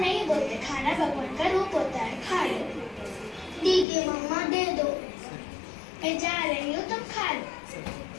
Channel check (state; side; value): drops out; right; at 3.9 s